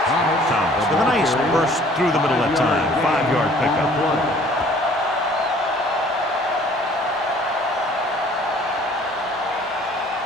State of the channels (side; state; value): both; normal; correlation 0.55